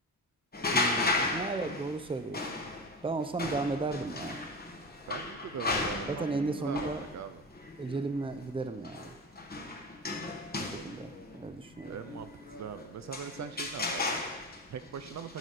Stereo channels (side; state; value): both; normal; correlation 0.25